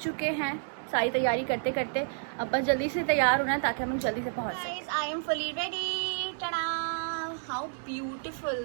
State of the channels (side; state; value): left; silent; digital silence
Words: चुके हैं सारी तैयारी करते करते। अब बस जल्दी से तैयार होना है ताकि हम लोग जल्दी से पहुंच सकें। I am fully ready. टडा, how beautiful